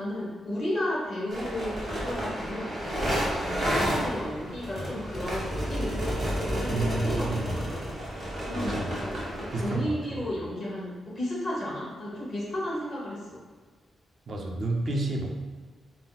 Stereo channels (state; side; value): normal; both; correlation 0.84